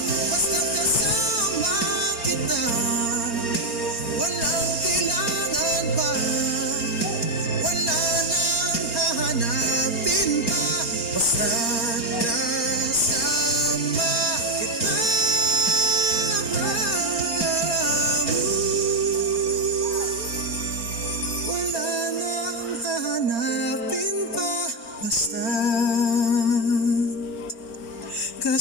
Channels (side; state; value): right; late; 4.3 ms